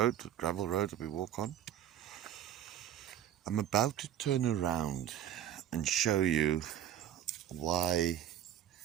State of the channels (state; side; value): quieter; left; 11.2 dB